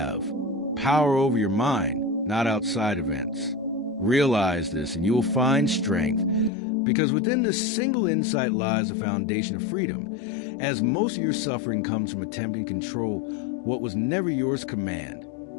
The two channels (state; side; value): drops out; right; at 6.5 s